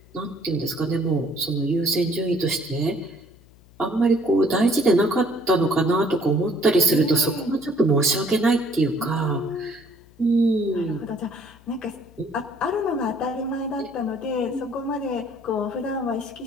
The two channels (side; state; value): left; noise; hum, 26 dB below the sound